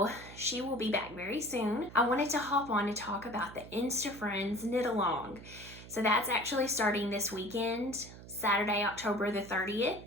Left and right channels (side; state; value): right; noise; hum, 16 dB below the sound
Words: she will be back very soon. I wanted to hop on to talk about the Insta Friends Knit Along. So that's actually starting this weekend, Saturday, October the 30th.